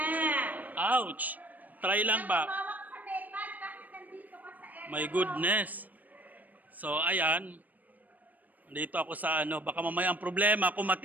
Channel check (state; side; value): late; left; 0.082 ms